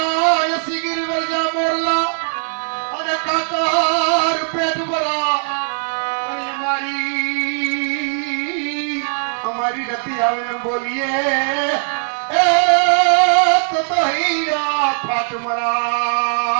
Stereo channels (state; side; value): silent; left; 60 dB below the other